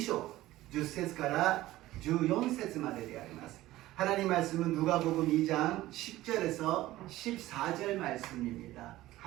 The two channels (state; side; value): quieter; left; 16.3 dB